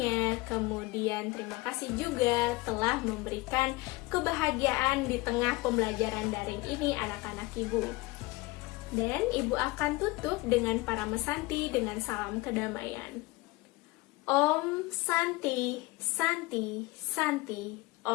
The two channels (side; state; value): right; quieter; 22.1 dB